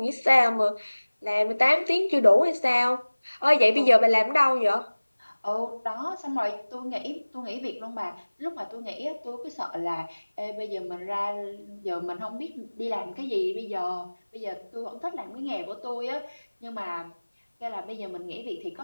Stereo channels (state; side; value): inverted; both; correlation -1.00